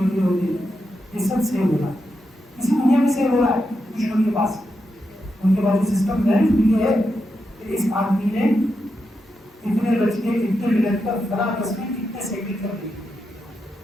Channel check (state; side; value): normal; both; correlation 0.86